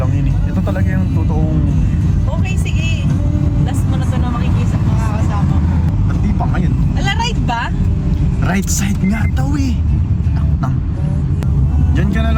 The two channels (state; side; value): identical; both; correlation 1.00